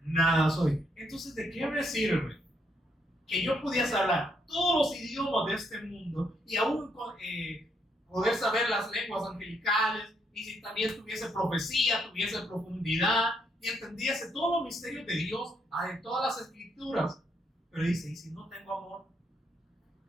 nada soy. Entonces, ¿de qué me sirve que yo pudiese hablar todos los idiomas de este mundo y aún poder saber las lenguas angelicales, y si también tuviese profecía, tuviese profundidad y entendiese todos los misterios de Dios en todas las escrituras? Pero dice, ¿y si no tengo amor?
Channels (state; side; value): normal; both; correlation 0.74